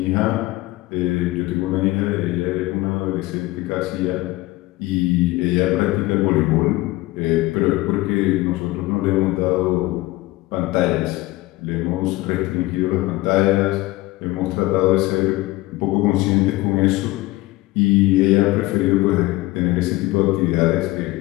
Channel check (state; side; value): quieter; right; 19.2 dB